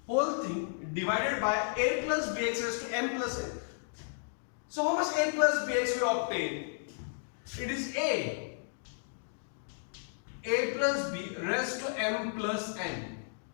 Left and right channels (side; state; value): right; silent; digital silence